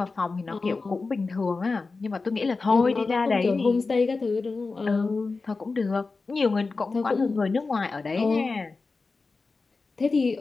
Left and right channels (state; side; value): quieter; right; 4.0 dB